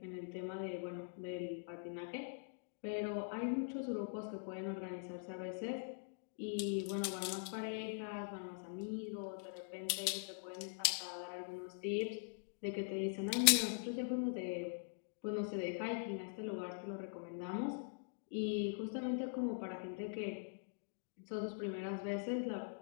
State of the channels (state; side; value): silent; right; digital silence